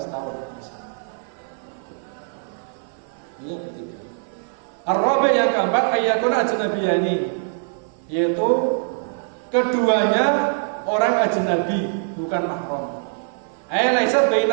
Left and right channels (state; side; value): silent; left; 57 dB below the other